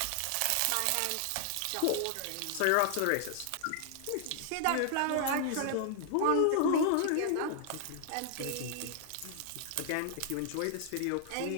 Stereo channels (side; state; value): both; different; correlation -0.01